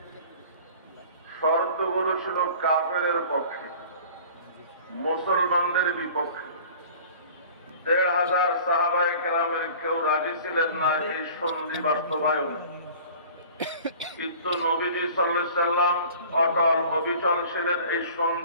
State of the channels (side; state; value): both; inverted; correlation -0.45